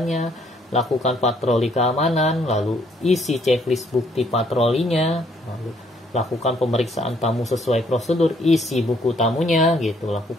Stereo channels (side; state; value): both; normal; correlation 0.67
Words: lakukan patroli keamanan, lalu isi checklist bukti patrolinya, lalu lakukan pemeriksaan tamu sesuai prosedur, isi buku tamunya gitu,